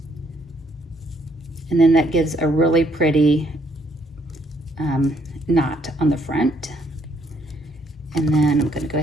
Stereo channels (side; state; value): both; normal; correlation 0.69